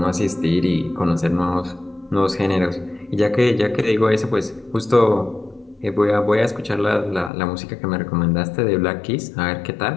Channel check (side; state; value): right; drops out; at 7.3 s